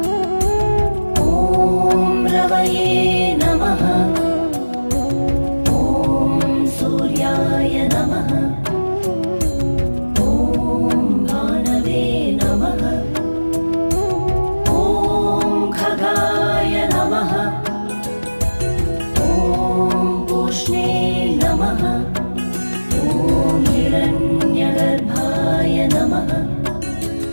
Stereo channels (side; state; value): both; inverted; correlation -1.00